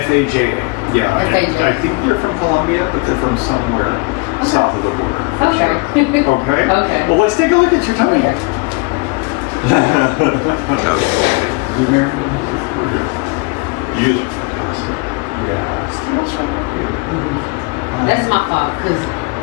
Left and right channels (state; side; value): quieter; right; 28.4 dB